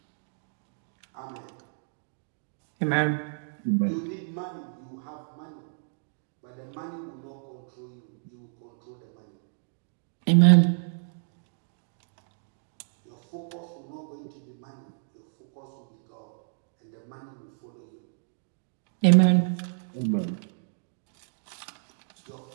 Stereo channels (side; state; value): left; silent; digital silence